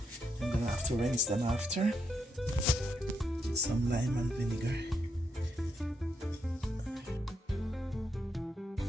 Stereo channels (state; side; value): normal; both; correlation 0.80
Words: I'm gonna have to rinse them after. Some lime and vinegar.